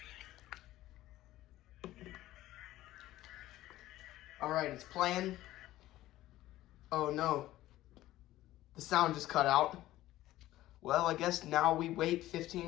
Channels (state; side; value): quieter; right; 15.3 dB